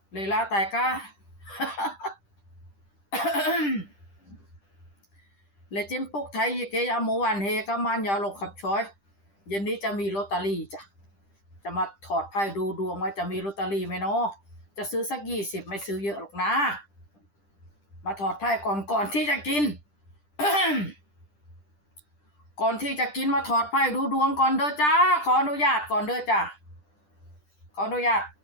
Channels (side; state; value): right; late; 10 ms